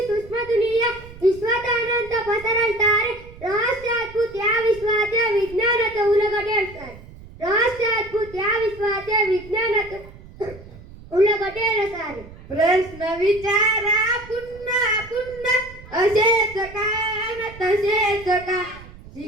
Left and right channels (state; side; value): noise; right; rumble, 18 dB below the sound